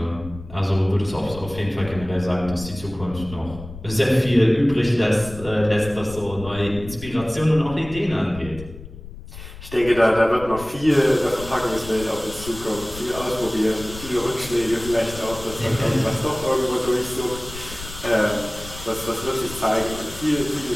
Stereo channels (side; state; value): left; noise; rumble, 14 dB below the sound